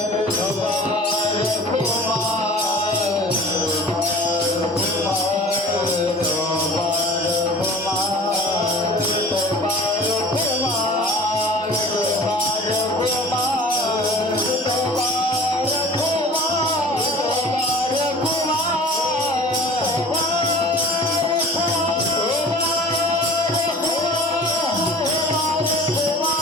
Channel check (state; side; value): normal; both; correlation 0.43